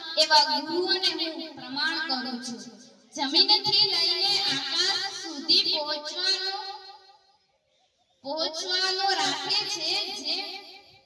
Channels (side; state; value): both; identical; correlation 1.00